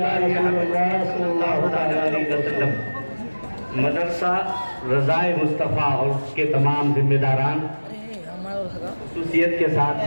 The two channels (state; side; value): inverted; both; correlation -1.00